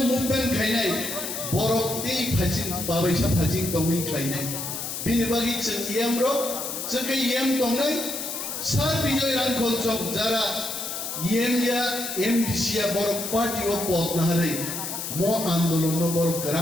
মুভমেন্ট খাইনাই বরকতেই ফাজিং বাবাইসা ফাজিং তংনি খাইনাই বিনি বাগি जों ইয়েমরক जों ইয়েম তংনাই সার বিজয় রানখল চক যারা ইয়েমিয়া এমডিসিয়া বরক পার্টি ও পদ নাহারে মো আন্দোলন বরক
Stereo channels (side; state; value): left; noise; hiss, 5 dB below the sound